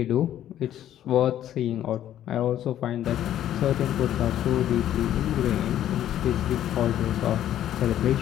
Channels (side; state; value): right; quieter; 11.6 dB